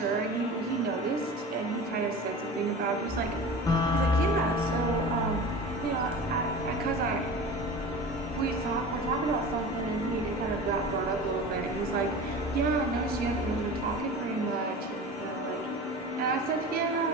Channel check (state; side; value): normal; both; correlation 0.34